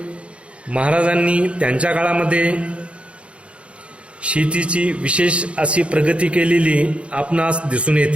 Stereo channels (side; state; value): left; late; 0.060 ms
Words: महाराजांनी त्यांच्या काळामध्ये शेतीची विशेष अशी प्रगती केलेली आपणास दिसून